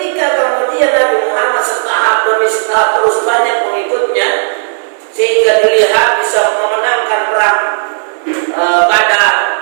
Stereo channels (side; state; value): left; silent; digital silence